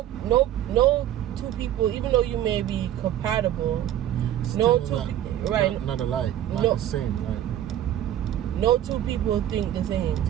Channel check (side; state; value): left; quieter; 11.7 dB